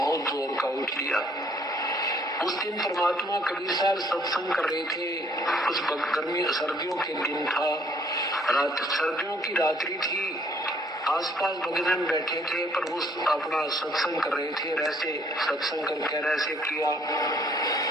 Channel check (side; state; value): both; normal; correlation 0.63